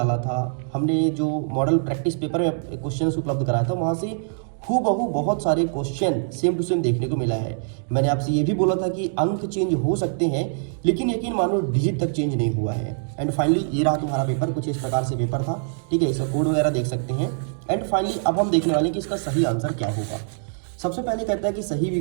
था, हमने जो मॉडल प्रैक्टिस पेपर में क्वेश्चन उपलब्ध कराया था, वहाँ से हूबहू बहुत सारे क्वेश्चन सेम टू सेम देखने को मिला है। मैंने आपसे ये भी बोला था कि अंक चेंज हो सकते हैं, लेकिन यकीन मानो डिजिट तक चेंज नहीं हुआ है। एंड फाइनली ये रहा तुम्हारा पेपर, कुछ इस प्रकार से पेपर था, ठीक है। इसका कोड वगैरह देख सकते हैं। एंड फाइनली अब हम देखने वाले हैं कि इसका सही आंसर क्या होगा। सबसे पहले कहता है कि सही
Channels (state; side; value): silent; left; digital silence